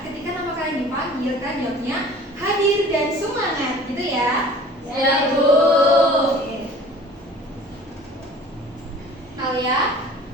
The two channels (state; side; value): normal; both; correlation 0.46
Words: Ketika nama kalian dipanggil, kan jawabnya hadir dan semangat, gitu ya? Ya, Bu. Oke. Alia,